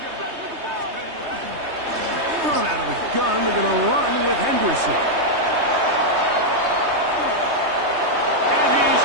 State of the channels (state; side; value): late; left; 3.2 ms